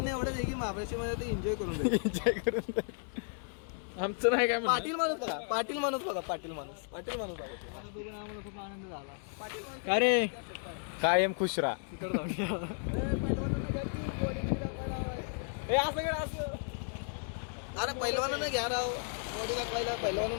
एवढंच आहे की महाबळेश्वरमध्ये ते एन्जॉय करून जाईल. एन्जॉय करून जा. आमचं नाही काय म्हणणं. पाटील माणूस बघा पाटील माणूस बघा आता बघून आम्हाला खूप आनंद झाला. पाटील माणूस का रे कायम खुश राहा. पहिलवानांना घ्या की बॉडी बिडी दाखवायला हवाय. असं घ्या असं. अरे पहिलवानांना घ्या राव बॉडी दाखवायला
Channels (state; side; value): silent; right; 55 dB below the other